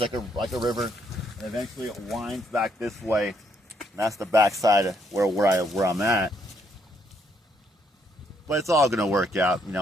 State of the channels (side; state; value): both; normal; correlation 0.72